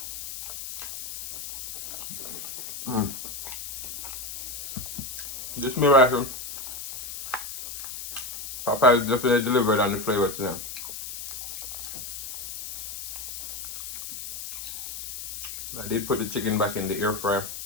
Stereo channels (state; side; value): noise; left; hiss, 8 dB below the sound